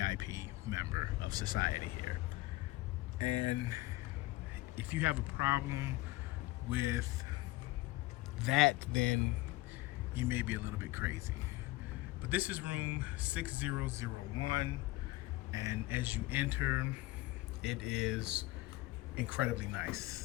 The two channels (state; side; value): quieter; right; 19.2 dB